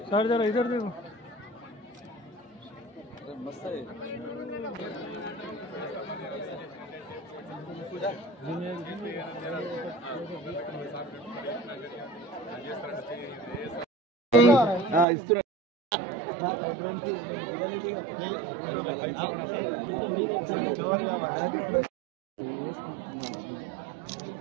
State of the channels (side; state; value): left; drops out; at 15.1 s